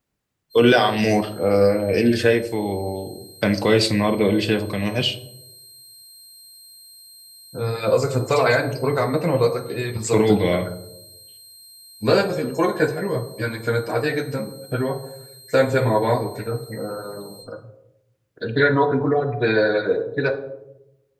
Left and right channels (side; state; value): both; identical; correlation 1.00